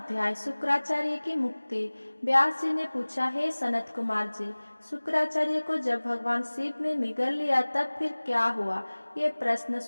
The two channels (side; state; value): both; inverted; correlation -1.00